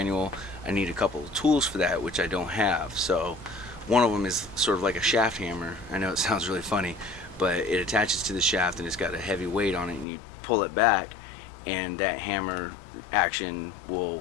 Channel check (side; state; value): right; drops out; at 10.1 s